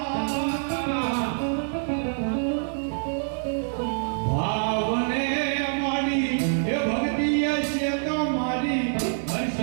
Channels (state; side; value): silent; left; digital silence